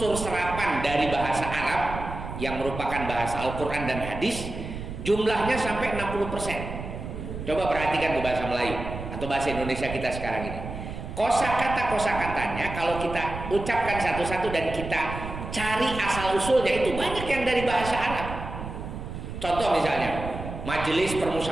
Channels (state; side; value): noise; right; rumble, 8 dB below the sound